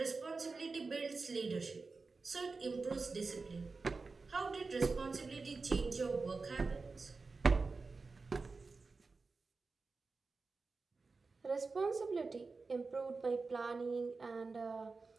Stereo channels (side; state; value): left; quieter; 4.1 dB